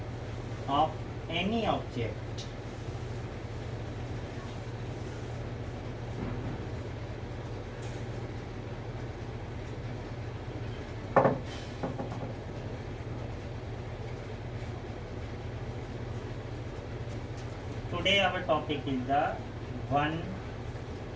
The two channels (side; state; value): both; identical; correlation 1.00